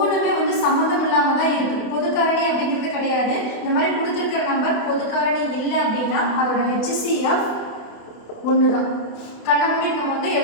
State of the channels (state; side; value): late; right; 28 ms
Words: சம்மந்தம் இல்லாமல் தான் இருக்குது, பொது காரணி அப்படிங்கிறது கிடையாது. இந்த மாதிரி கொடுத்துருக்கிற நம்பர் பொது காரணி இல்லை அப்படின்னா அதோட HCF 1 தான். கண்ணை மூடி நம்ம